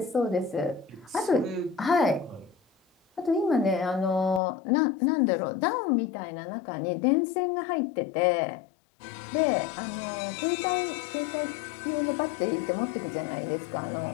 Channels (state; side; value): drops out; right; at 4.4 s